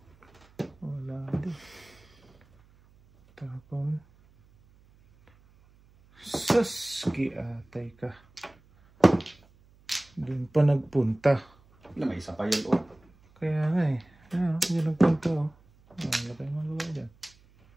Wala din. Tapon. Saski atay ka. Doon pa nagpunta. May isa pa yun, oh. Kaya nga eh. Yan ang punta oh. Wala tayong magawa dyan.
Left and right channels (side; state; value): right; noise; hum, 29 dB below the sound